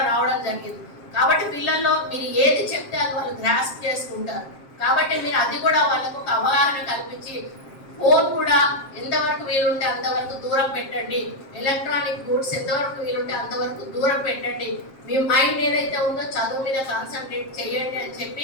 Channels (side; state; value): right; late; 7.5 ms